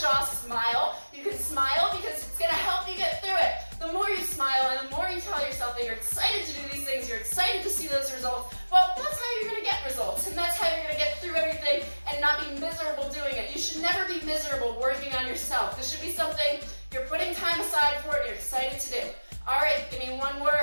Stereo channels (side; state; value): both; inverted; correlation -1.00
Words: Smile. You can smile because it's gonna help you get through it. The more you smile and the more you tell yourself that you're excited to do these things, you're excited to see those results, well, that's how you're gonna get results. And that's how you're gonna get through everything and not be miserable doing it. You should never be miserable working on yourself. This should be something you're putting time aside for and you're excited to do. All right, give me one